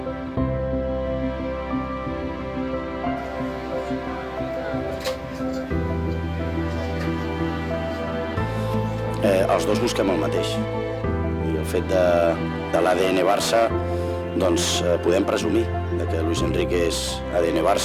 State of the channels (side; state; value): both; identical; correlation 1.00